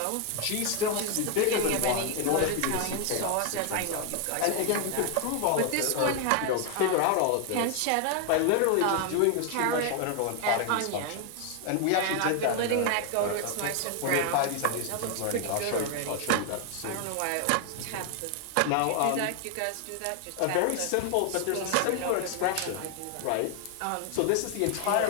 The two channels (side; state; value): both; different; correlation 0.00